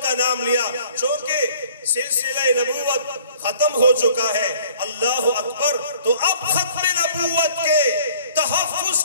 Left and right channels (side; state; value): both; inverted; correlation -0.55